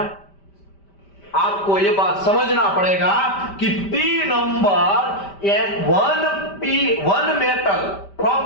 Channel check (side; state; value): right; late; 5.1 ms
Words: आपको ये बात समझना पड़ेगा कि P number one metal